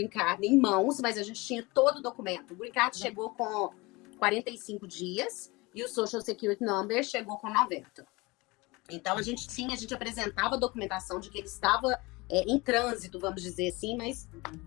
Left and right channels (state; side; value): quieter; right; 23.8 dB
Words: Card em mãos, mas a gente tinha todo o documento. O Green Card chegou com 45 dias e o Social Security Number chegou com 90. Então, a gente apresentava a documentação de que ele estava em trânsito, vamos dizer assim, mas